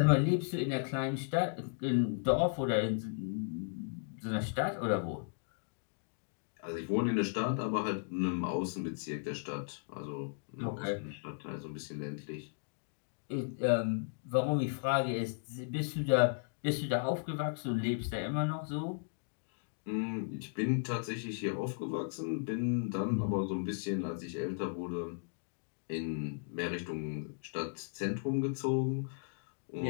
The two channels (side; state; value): right; silent; digital silence